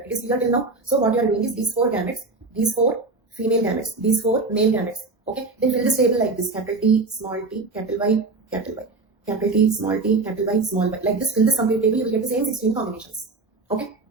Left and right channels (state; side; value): quieter; left; 3.7 dB